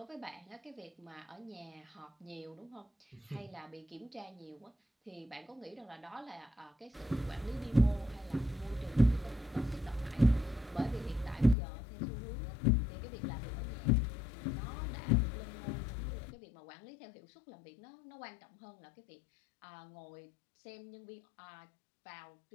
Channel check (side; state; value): right; drops out; at 11.6 s